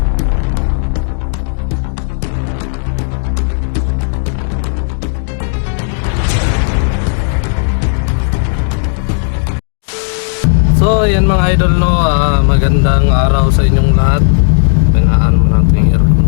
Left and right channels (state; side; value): silent; right; 69 dB below the other